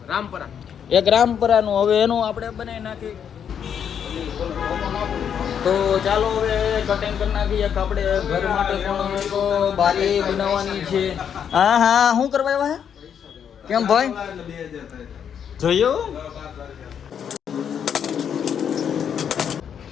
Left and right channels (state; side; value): quieter; right; 8.1 dB